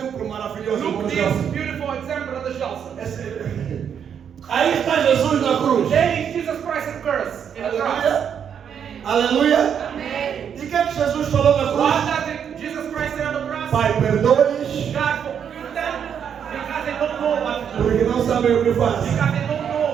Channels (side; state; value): left; quieter; 8.0 dB